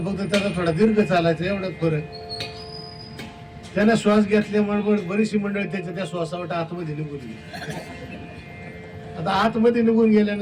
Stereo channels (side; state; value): both; identical; correlation 1.00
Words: फक्त त्याला थोडा दीर्घ चालायचा, एवढाच फरक. त्याने श्वास घेतल्यामुळे बरीचशी मंडळी त्याच्या त्या श्वासावट आतमध्ये निघून गेली. आता आतमध्ये निघून